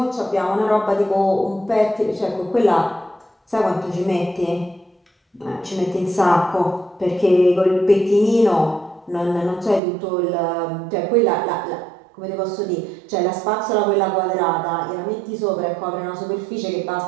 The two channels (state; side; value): drops out; left; at 9.8 s